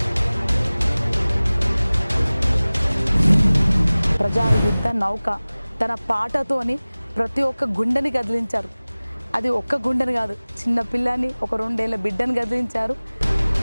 ప్రజా యుద్ధ నౌక తన పాటతోని ప్రతి ఒక్క గుండెని కదిలించారు. అది ఒక్క గుండెని కాదు, చిన్న పిల్లని, ఒక 2 ఏళ్ల బిడ్డని కదిలించారు.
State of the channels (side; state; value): both; inverted; correlation -0.99